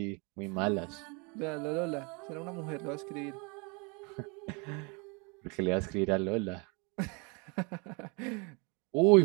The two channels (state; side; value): quieter; left; 31.5 dB